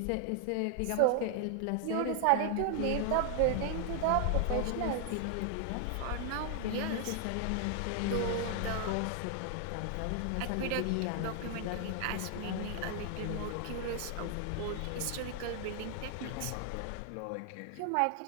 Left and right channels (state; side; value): different; both; correlation 0.00